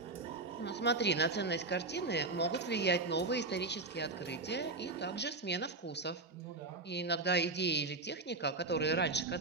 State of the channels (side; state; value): left; quieter; 3.4 dB